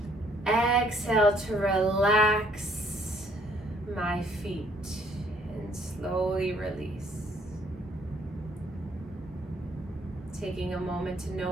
Exhale to relax my feet and slowly release. Taking a moment to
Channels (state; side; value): normal; both; correlation 0.64